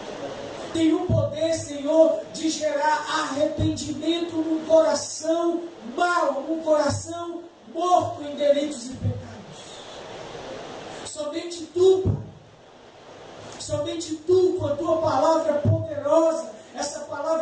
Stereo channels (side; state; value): both; identical; correlation 1.00